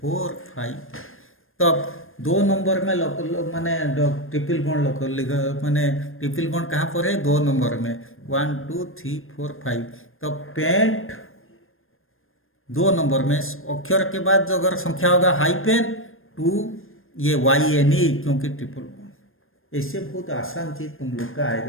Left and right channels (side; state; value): right; late; 0.60 ms